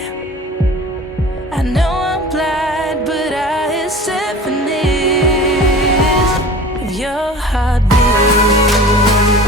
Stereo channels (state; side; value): normal; both; correlation 0.40